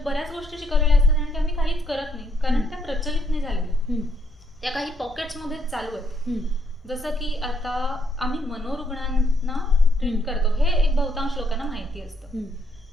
गोष्टी शिकवलेल्या असतात आणि त्या आम्ही काहीच करत नाही, कारण त्या प्रचलित नाही झालेल्या, त्या काही पॉकेट्समध्येच चालू आहेत. जसं की आता आम्ही मनोरुग्णांना ट्रीट करतो, हे एक बहुतांश लोकांना माहिती असतं.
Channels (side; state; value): both; normal; correlation 0.73